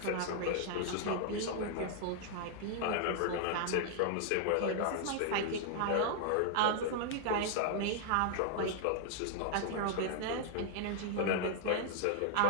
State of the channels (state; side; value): different; both; correlation 0.00